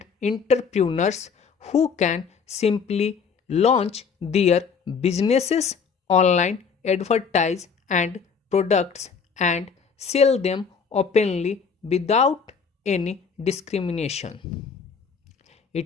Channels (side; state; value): right; quieter; 5.9 dB